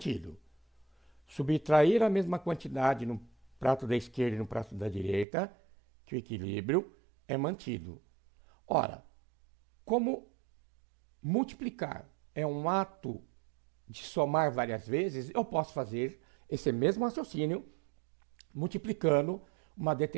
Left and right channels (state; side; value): drops out; left; at 5.2 s